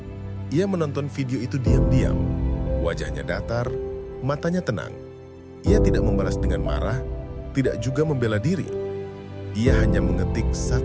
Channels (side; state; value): both; identical; correlation 1.00